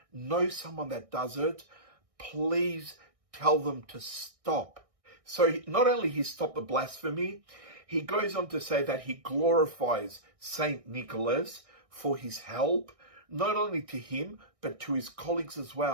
knows someone that does it, please tell them to stop. So not only he stopped the blasphemy, he goes on to say that he glorifies Saint Nicholas for his help, not only to him, but to his colleagues as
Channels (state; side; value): late; left; 1.6 ms